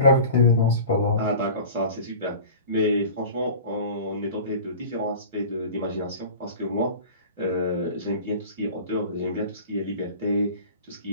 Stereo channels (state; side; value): inverted; both; correlation -0.39